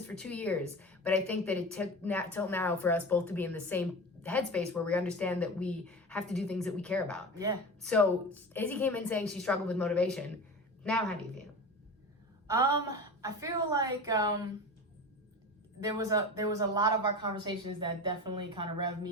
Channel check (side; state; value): both; normal; correlation 0.30